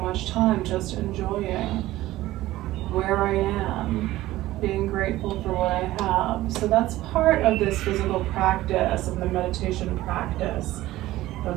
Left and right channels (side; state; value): left; quieter; 16.3 dB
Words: time just enjoying where I am, being grateful for what I have. So that's part of this physical practice, of the meditation practice